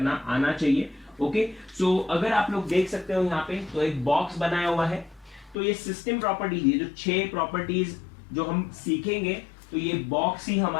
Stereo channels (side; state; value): right; drops out; at 5.6 s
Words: आना चाहिए. ओके, सो अगर आप लोग देख सकते हो यहाँ पे तो एक बॉक्स बनाया हुआ है. तो ये सिस्टम प्रॉपर्टीज, ये जो 6 प्रॉपर्टीज जो हम सीखेंगे, तो ये बॉक्स ही